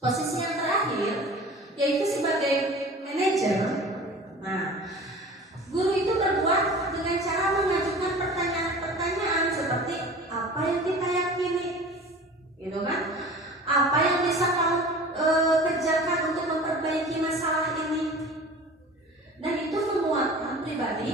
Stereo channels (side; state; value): both; normal; correlation 0.40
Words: yang terakhir, yaitu sebagai manajer, nah, guru itu berbuat dengan cara mengajukan pertanyaan-pertanyaan seperti apa yang kita yakini, gitu kan? Apa yang bisa kamu kerjakan untuk memperbaiki masalah ini? Dan itu menguatkan